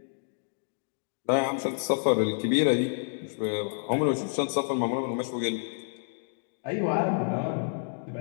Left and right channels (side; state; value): right; silent; digital silence